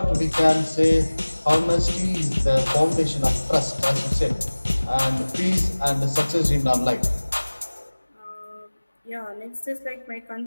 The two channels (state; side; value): inverted; both; correlation -1.00